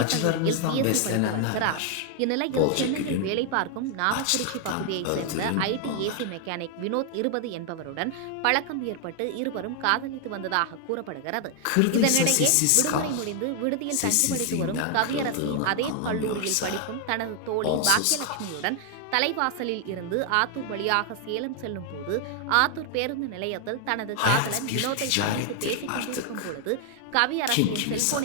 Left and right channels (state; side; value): different; both; correlation 0.00